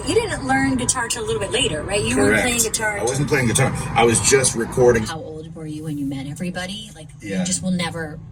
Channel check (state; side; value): identical; both; correlation 1.00